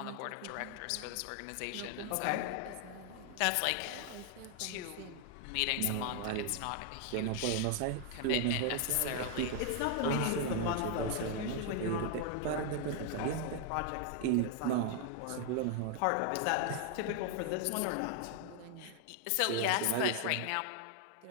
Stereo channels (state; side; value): different; both; correlation 0.00